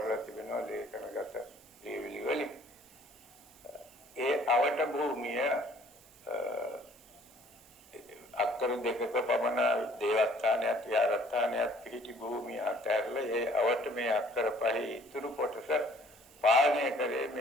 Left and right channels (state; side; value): noise; right; hiss, 25 dB below the sound